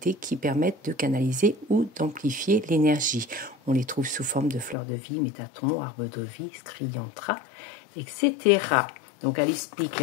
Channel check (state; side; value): drops out; right; at 4.8 s